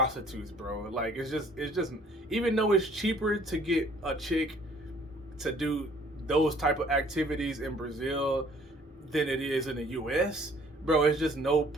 bro. Like, it's just even though it's cheaper to get a chick to do those type of activities in Brazil than it is in the US, bro, it's just no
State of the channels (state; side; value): normal; both; correlation 0.57